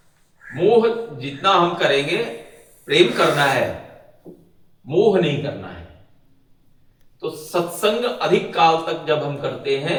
मोह जितना हम करेंगे, प्रेम करना है, मोह नहीं करना है। तो सत्संग अधिक काल तक जब हम करते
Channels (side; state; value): both; identical; correlation 1.00